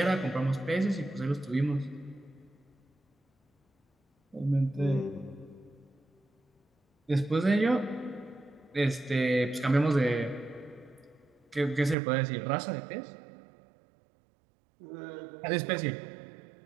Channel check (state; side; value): drops out; left; at 12.0 s